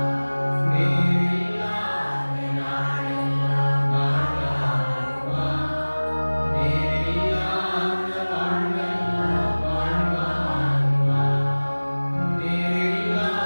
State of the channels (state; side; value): inverted; both; correlation -1.00